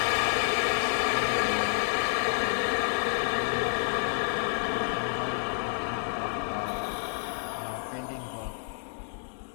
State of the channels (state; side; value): silent; right; 58 dB below the other